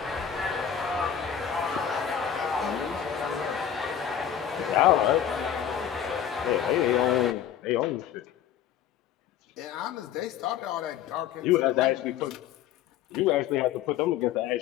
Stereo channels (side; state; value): right; quieter; 9.5 dB